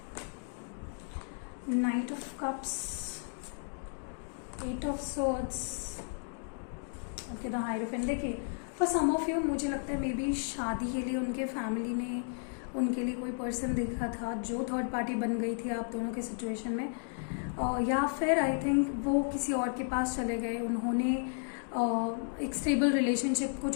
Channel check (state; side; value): silent; right; 55 dB below the other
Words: Knight of cups, eight of swords, okay, the hierophant. देखिए फॉर सम ऑफ यू मुझे लगता है मे बी शादी के लिए उनके फैमिली ने उनके लिए कोई पर्सन देखा था जो थर्ड पार्टी बन गई थी आप दोनों के सिचुएशन में. या फिर आई थिंक वो किसी और के पास चले गए. उन्होंने एक स्टेबल रिलेशनशिप को